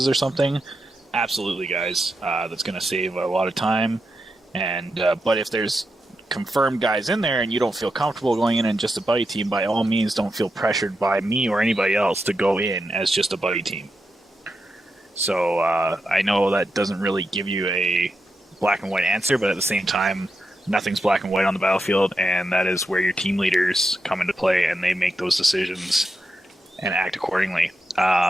or something, absolutely, guys. That's going to save a lot of time. And but if there's confirmed guys in there and you don't feel comfortable going in just a buddy team, by all means, don't feel pressured by me or anybody else to go in as just a buddy team. So I know that doesn't really give you a black and white answer, but at the same time, nothing's black and white on the battlefield, and that is where your team leaders come into play, and they make those decisions and act accordingly.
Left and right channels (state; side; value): normal; both; correlation 0.87